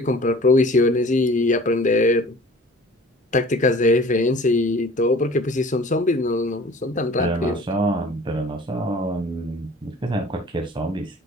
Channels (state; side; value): normal; both; correlation 0.47